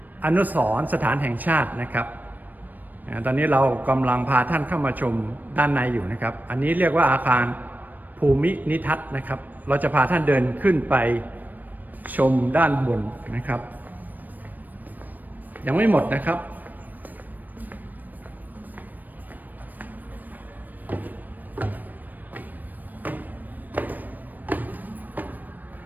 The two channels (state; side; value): late; left; 0.086 ms